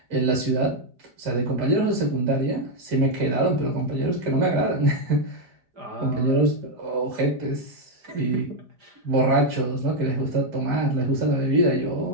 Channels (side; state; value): left; late; 5.0 ms